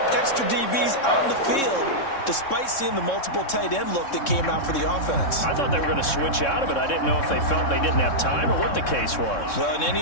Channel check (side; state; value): right; late; 3.6 ms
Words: extra DBs on the field despite seeing the multiple tight end look that came out for the offense. I thought they were going to switch out of it. I didn't know if they felt they didn't have time or what the case was. Well, in